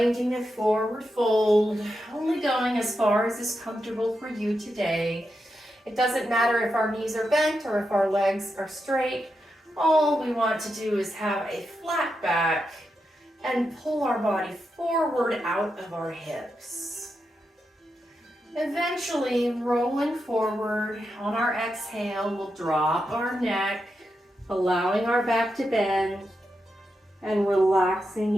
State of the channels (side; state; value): both; normal; correlation 0.86